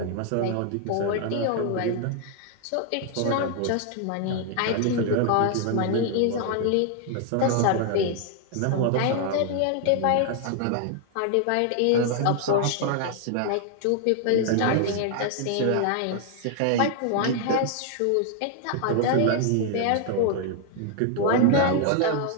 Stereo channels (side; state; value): both; different; correlation 0.00